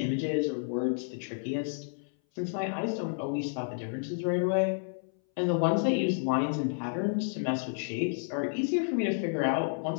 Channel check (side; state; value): right; silent; 57 dB below the other